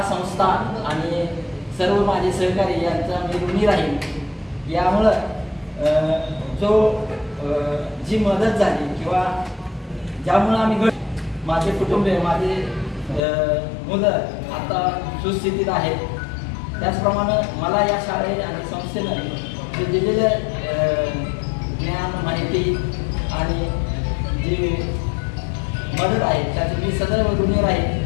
संस्था आणि सर्व माझे सहकारी यांचा मी ऋणी राहील. यामुळं जी मदत झाली किंवा ज्यामुळं आम्ही माझे कुटुंबीय, माझे मुलं आता सुस्थितीत आहेत. त्याचप्रमाणे मला या शाळे आणि संस्थेनं जे दिलेलं ज्ञान, माहिती आणि जी मदत आहे त्याची मी सदैव ऋणी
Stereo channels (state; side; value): drops out; right; at 13.2 s